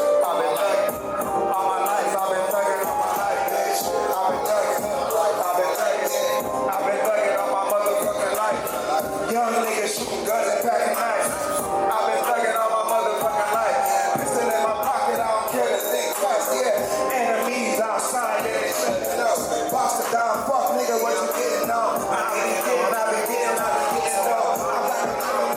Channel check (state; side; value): identical; both; correlation 1.00